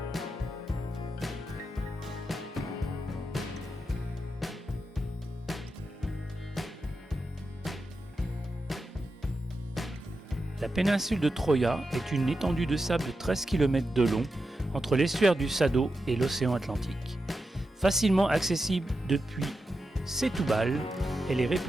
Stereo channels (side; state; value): both; normal; correlation 0.89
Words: La péninsule de Troia est une étendue de sable de 13 km de long entre l'estuaire du Sado et l'océan Atlantique. Facilement accessible depuis Setúbal, elle est